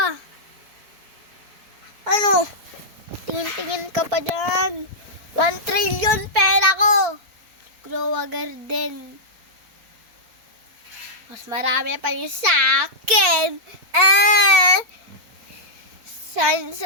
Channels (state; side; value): late; left; 4.5 ms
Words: Ano? Tingin-tingin ka pa dyan. 1 trillion pera ko. Grow a garden. Mas marami pa yung sa akin.